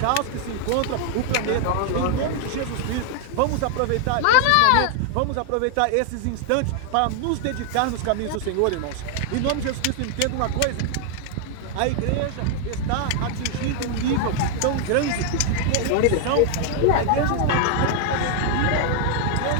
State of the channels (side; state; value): both; different; correlation 0.00